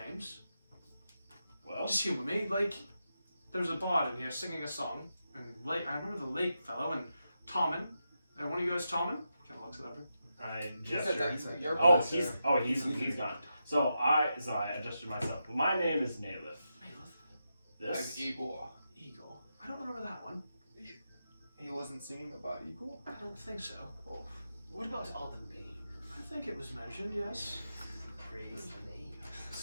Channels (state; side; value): inverted; both; correlation -0.87